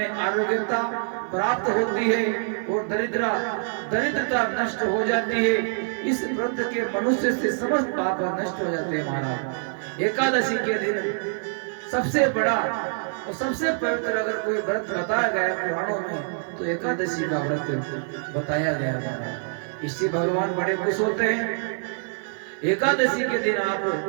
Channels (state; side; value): silent; left; 62 dB below the other